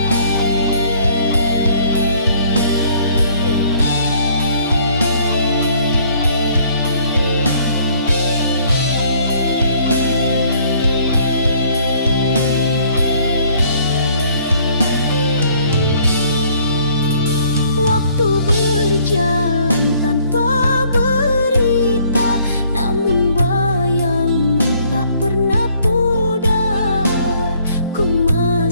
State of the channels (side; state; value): both; inverted; correlation -0.61